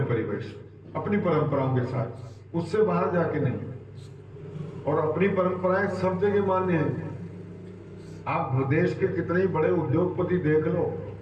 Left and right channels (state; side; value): identical; both; correlation 1.00